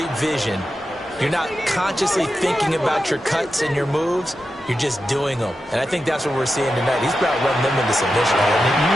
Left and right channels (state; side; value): normal; both; correlation 0.90